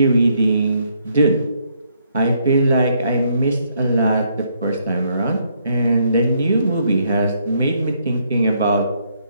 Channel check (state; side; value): inverted; both; correlation -0.72